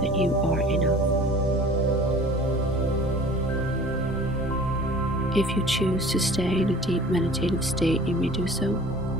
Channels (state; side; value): normal; both; correlation 0.46